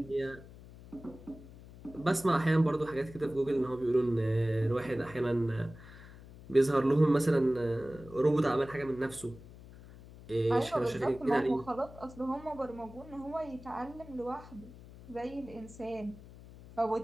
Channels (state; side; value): noise; left; hum, 18 dB below the sound